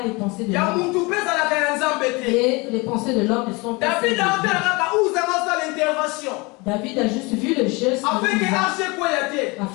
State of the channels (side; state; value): right; quieter; 26.2 dB